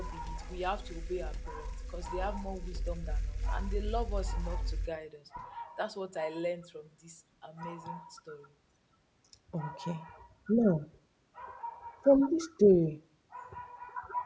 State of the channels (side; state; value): both; identical; correlation 1.00